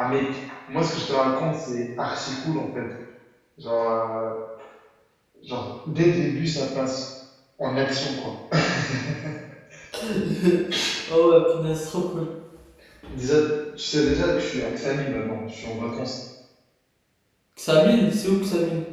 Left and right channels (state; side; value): identical; both; correlation 1.00